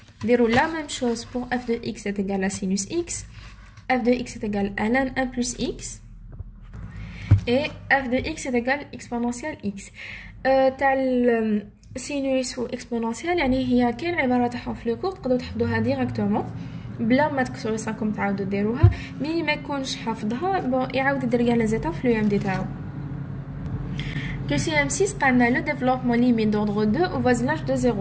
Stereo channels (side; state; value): both; identical; correlation 1.00